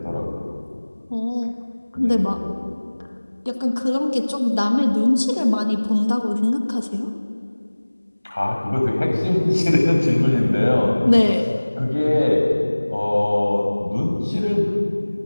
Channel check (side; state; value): both; inverted; correlation -1.00